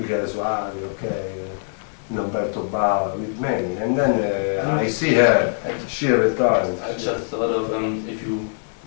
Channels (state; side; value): silent; right; 64 dB below the other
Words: Soavi, okay, Umberto Bava, with many. And then I see her, she retired. I just thought of if you